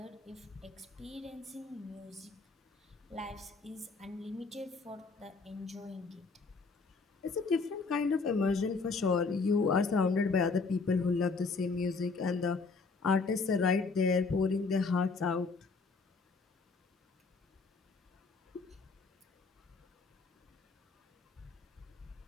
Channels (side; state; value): right; quieter; 4.3 dB